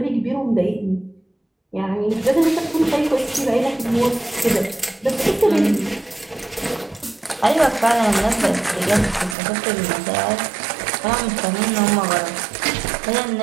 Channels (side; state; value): left; drops out; at 9.3 s